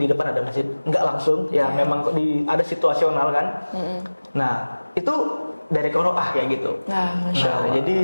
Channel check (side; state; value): both; inverted; correlation -1.00